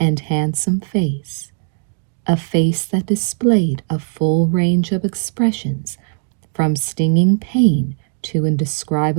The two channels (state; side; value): silent; left; digital silence